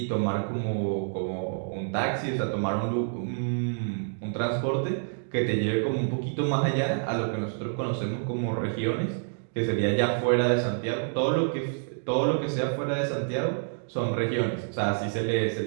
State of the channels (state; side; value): silent; left; digital silence